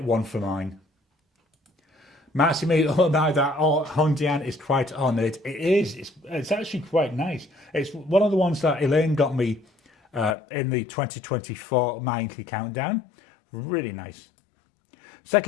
one for mine. Massimo, oh no, that Hondian is quite on it. It is. It's actually quite nice. It's one of the ones that Elaine got me in the 2024 Mindkey Countdown. Really nice.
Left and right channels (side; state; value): right; drops out; at 10.4 s